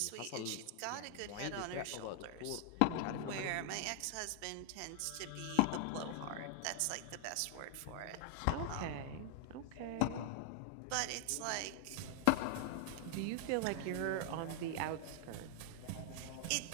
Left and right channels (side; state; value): both; different; correlation 0.00